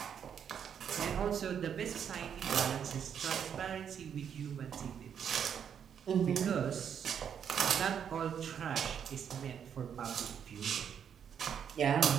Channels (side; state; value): left; quieter; 8.1 dB